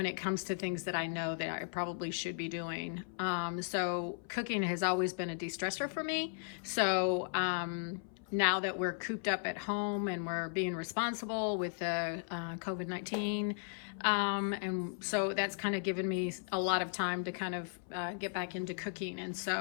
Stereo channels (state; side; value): silent; right; 54 dB below the other